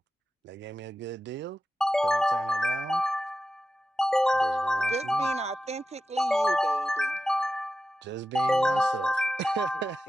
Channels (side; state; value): both; normal; correlation 0.92